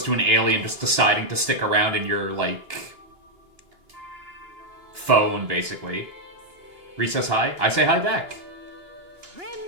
to an alien just deciding to stick around in your, like, phone, basically. Reese says hi. I say hi back.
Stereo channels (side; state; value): left; late; 2.8 ms